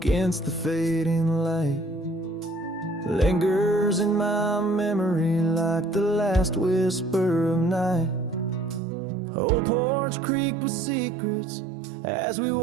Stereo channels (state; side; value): drops out; left; at 8.8 s